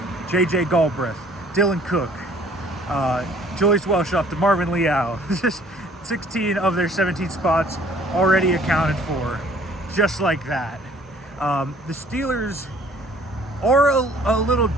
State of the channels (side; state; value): both; normal; correlation 0.56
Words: J.J. Galbraith, Dylan Cook, Julius Welshoff to Marvin Leal. Just 16 of their 17 spots already accounted for, just like that. The Steelers are a little